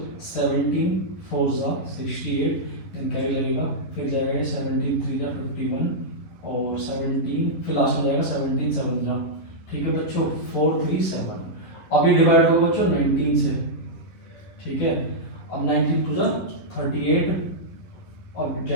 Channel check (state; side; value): late; right; 11 ms